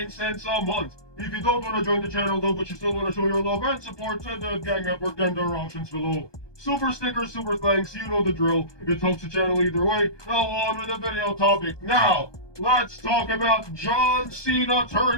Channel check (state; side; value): late; right; 1.2 ms